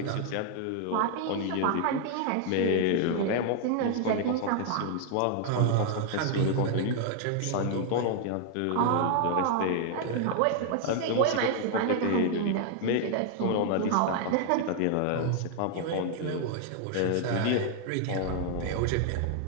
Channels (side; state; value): both; different; correlation 0.00